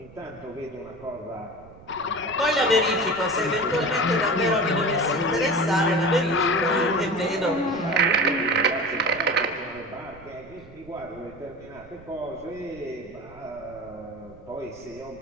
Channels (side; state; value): right; noise; rumble, 21 dB below the sound